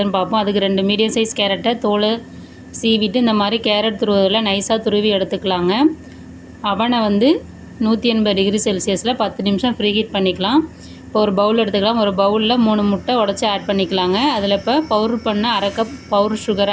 பார்ப்போம். அதுக்கு 2 மீடியம் சைஸ் கேரட்டை தோலை சீவிட்டு இந்த மாதிரி கேரட் துருவதில் நைஸாக துருவி எடுத்துக்கலாங்க. அவனை 180 டிகிரி செல்சியஸில் 10 நிமிஷம் ஃப்ரீ ஹீட் பண்ணிக்கலாம். இப்போ ஒரு பவுல் எடுத்துக்கலாம். ஒரு பவுலில் 3 முட்டை உடச்சி ஆட் பண்ணிக்கலாங்க. அதில் இப்போ பவுடர் பண்ண அரை கப் பவுடர்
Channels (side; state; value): both; identical; correlation 1.00